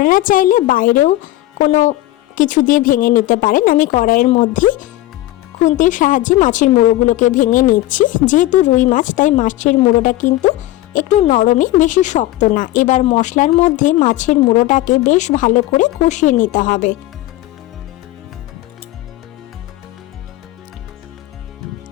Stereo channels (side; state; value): right; quieter; 16.1 dB